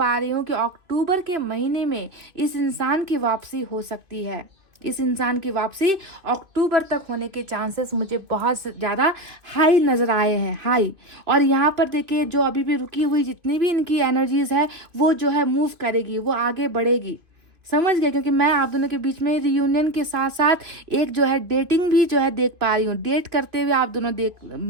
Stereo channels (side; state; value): left; late; 2.5 ms